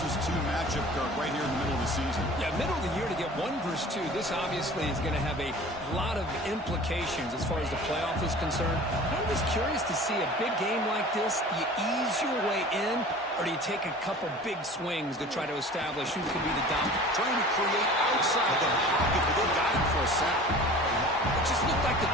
2 matchup, Kirk, right here in the middle of the season. Yeah, middle of the year to get 1 versus 2. This obviously is going to have a lot of implications as far as the playoff is concerned. I'm just curious to see a big game like this. Do you ease your way in, or do you take a couple big swings to try to establish who could be the dominant? Trying to create outside the pocket, but they got him for a sack. It just looked like the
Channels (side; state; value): both; normal; correlation 0.42